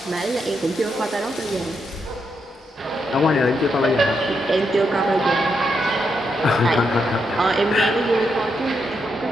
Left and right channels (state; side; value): normal; both; correlation 0.81